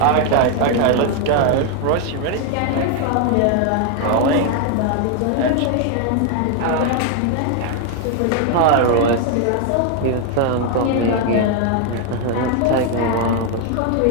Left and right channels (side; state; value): both; different; correlation 0.01